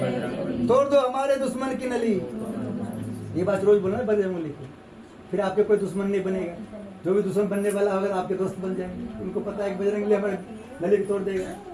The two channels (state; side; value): identical; both; correlation 1.00